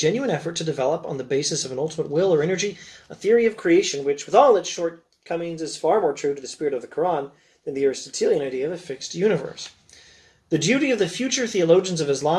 effort to develop, on the basis of an ultimate will or energy, a theory of creation which, with all its shortcomings, is far more true to the spirit of the Quran than the Aristotelian idea of a fixed universe. The duty of the future theologians of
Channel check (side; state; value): both; identical; correlation 1.00